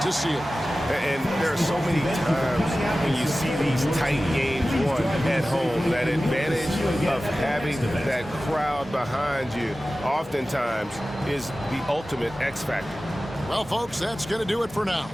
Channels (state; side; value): normal; both; correlation 0.96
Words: seal. And there are so many times when you see these tight games won at home, that advantage of having that crowd behind you oftentimes is the ultimate X factor. Well, folks, that's going to do it for now.